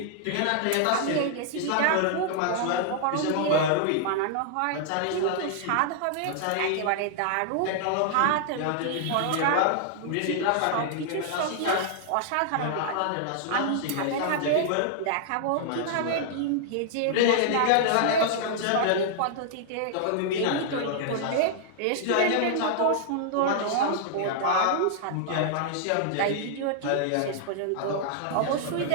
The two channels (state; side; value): different; both; correlation -0.01